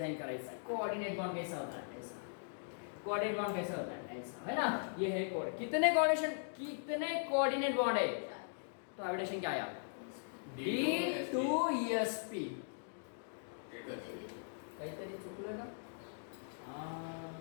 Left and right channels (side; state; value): right; silent; digital silence